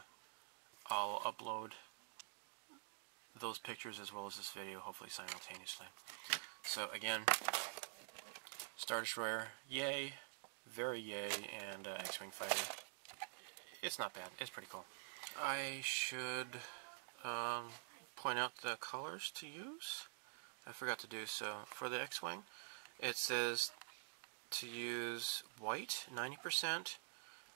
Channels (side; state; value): left; silent; digital silence